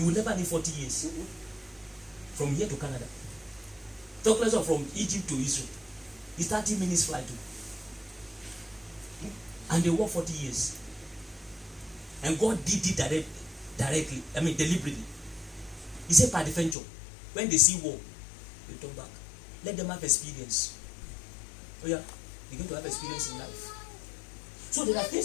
will never need 40 years. From here to Canada. Talk less of from Egypt to Israel. It's 30 minutes flight. And they work 40 years. And God did it directly. I mean, deliberately. He said, by the venture, when they see war, they turn back. Let them have experience. Oh yeah, they're going to have experience in life. So there are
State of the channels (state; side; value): drops out; right; at 16.8 s